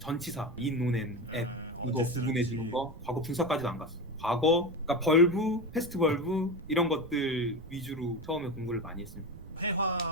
in, on, and, at 이거 구분해 주는 거. 과거 분사까지도 안 갔어. 과거, 그러니까 벌브, 패스트 벌브 이런 것들 위주로 처음에 공부를 많이 했습니다.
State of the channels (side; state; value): right; noise; rumble, 16 dB below the sound